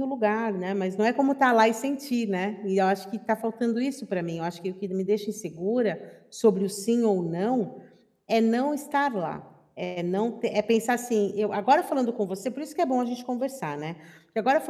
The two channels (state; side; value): identical; both; correlation 1.00